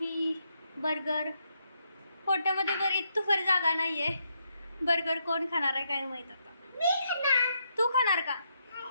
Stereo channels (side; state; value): both; inverted; correlation -0.78